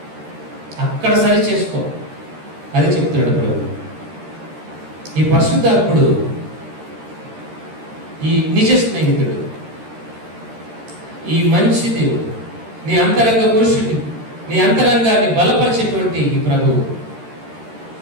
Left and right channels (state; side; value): late; left; 13 ms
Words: అక్కడ సరి చేసుకో. అది చెప్తున్నాడు ప్రభు. ఈ పరిశుద్ధాత్ముడు, ఈ నిజ స్నేహితుడు, ఈ మంచి దేవుడు, నీ అంతరంగ పురుషుని, నీ అంతరంగాన్ని బలపరిచేటువంటి ఈ ప్రభువు